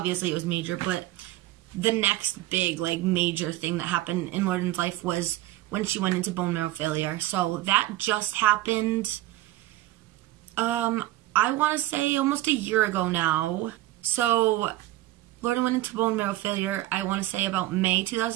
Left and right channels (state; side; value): quieter; left; 16.1 dB